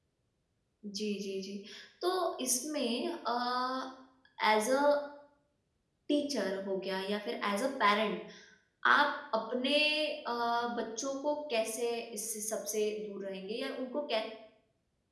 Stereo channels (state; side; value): identical; both; correlation 1.00